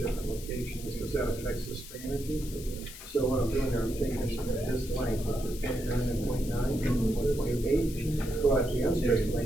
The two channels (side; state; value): left; noise; hiss, 14 dB below the sound